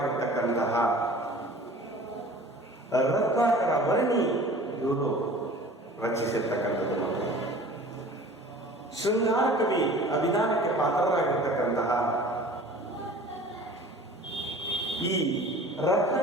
ರತ್ನಾಕರ ವರ್ಣಿ ಇವರು ರಚಿಸಿರ್ತಕ್ಕಂಥದ್ದು. ಮತ್ತು ಶೃಂಗಾರ ಕವಿ ಅಭಿಧಾನಕ್ಕೆ ಪಾತ್ರರಾಗಿರ್ತಕ್ಕಂತಹ ಈ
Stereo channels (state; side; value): normal; both; correlation 0.44